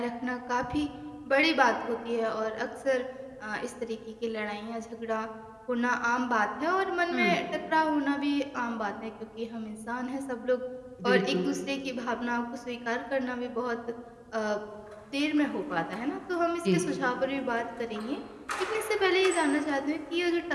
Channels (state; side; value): identical; both; correlation 1.00